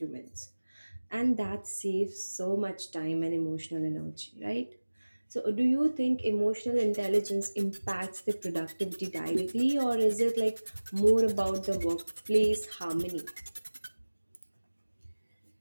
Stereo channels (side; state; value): both; inverted; correlation -1.00